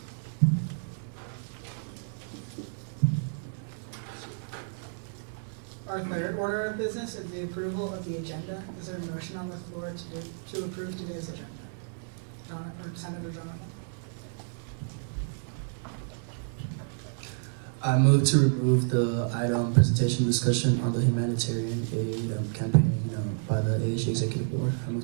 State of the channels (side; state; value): left; silent; 58 dB below the other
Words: Our third order of business is the approval of the agenda. Is there a motion on the floor to approve today's agenda? Senator Jonathan. I move to remove the item presentation discussion on the humanitarian aid campaign by the ASG Executive Board. I move